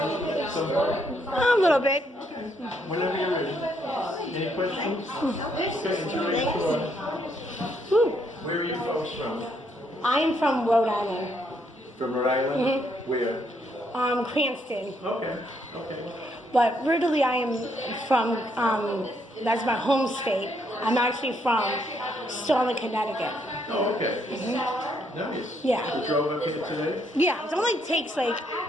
A little bit. Whenever you're ready. Any questions? Okay, enjoy your tour. Where are you folks from? I am from Rhode Island. From Rhode Island? Where? Cranston. Okay. But originally I am from, that's my home state. I'm actually from Sterling, Connecticut. Oh, okay. Nice. Yeah. You drove up here today? Yeah, it only takes like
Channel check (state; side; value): normal; both; correlation 0.73